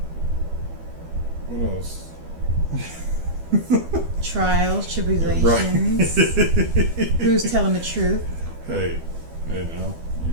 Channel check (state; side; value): late; left; 12 ms